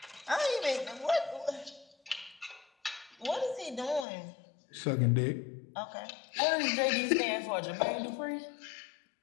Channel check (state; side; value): drops out; right; at 4.0 s